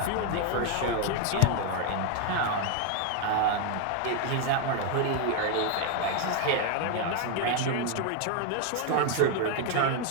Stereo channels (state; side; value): different; both; correlation 0.01